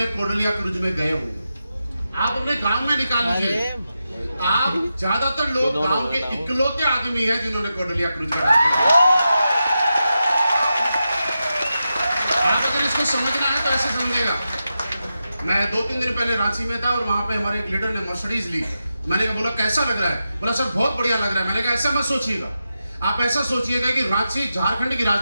कोडलिया क्रूज में गए होंगे? आप अपने गांव में निकाल लीजिए, आप ज्यादातर लोग गांव के इकलौते आदमी हैं जिन्होंने कोडलिया क्रूज का रास्ता किया। आप अगर इसको समझना है तो ऐसे समझेगा। मैं 2-3 दिन पहले रांची में था और वहां पे हमारे एक लीडर ने मर्सिडीज ली। मैंने बोला कैसा लग रहा है? बोला सर बहुत बढ़िया लग रहा है। मैंने कहा ऐसा मत सोचिएगा, आप ऐसा सोचिएगा कि रांची झारखंड की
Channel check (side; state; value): both; inverted; correlation -0.90